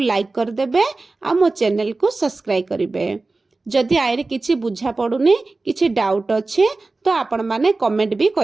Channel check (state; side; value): quieter; left; 3.4 dB